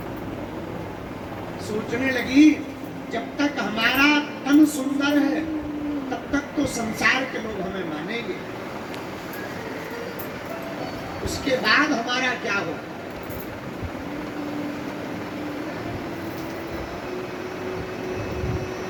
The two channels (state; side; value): identical; both; correlation 1.00